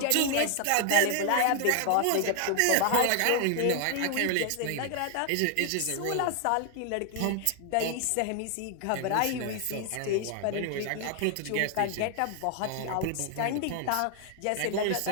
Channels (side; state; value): both; different; correlation 0.00